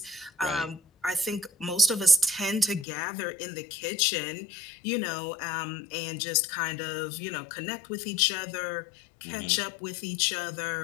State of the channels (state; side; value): drops out; right; at 2.9 s